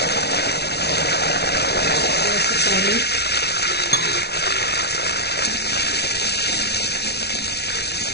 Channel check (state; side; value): late; right; 0.48 ms